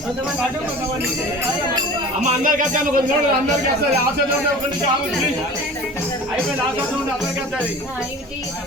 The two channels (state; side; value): normal; both; correlation 0.39